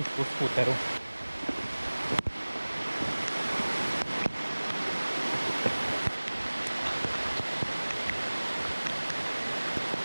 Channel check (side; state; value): both; inverted; correlation -1.00